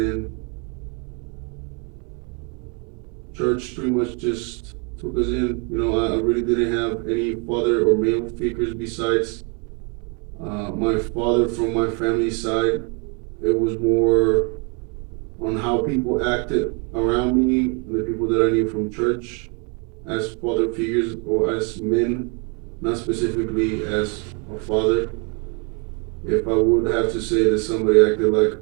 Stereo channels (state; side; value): quieter; left; 33.3 dB